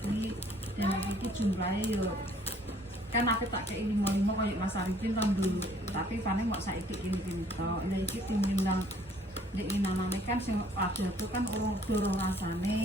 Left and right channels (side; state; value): both; normal; correlation 0.60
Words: dan iki jumlahe yo kan aku tak kei 5 koyo Mas Arifin tahun dulu tapi paling kok saiki ini tok lha iki timbang nek inanane kan sing ada tuh kan dorong